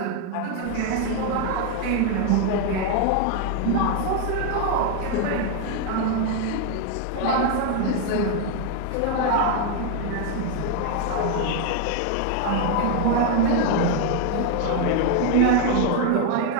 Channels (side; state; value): both; different; correlation 0.01